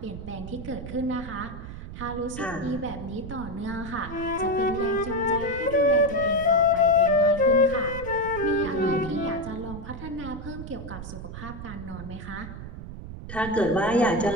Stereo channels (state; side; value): noise; right; rumble, 10 dB below the sound